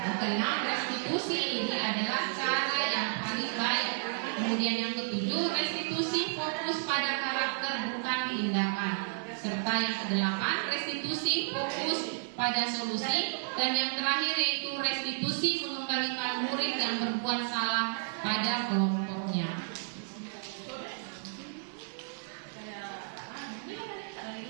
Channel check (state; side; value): silent; left; digital silence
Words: keenam, restitusi ini adalah cara yang paling baik. Kemudian yang ketujuh, restitusi fokus pada karakter bukan tindakan. Serta yang kedelapan, restitusi fokus pada solusi. Dan yang terakhir yaitu restitusi mengembalikan murid yang berbuat salah pada kelompoknya.